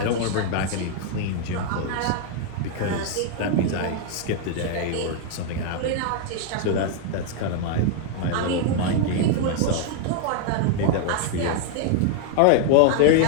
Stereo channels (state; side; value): different; both; correlation 0.00